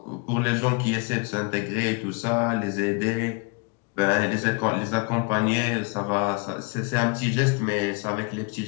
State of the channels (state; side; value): quieter; right; 31.3 dB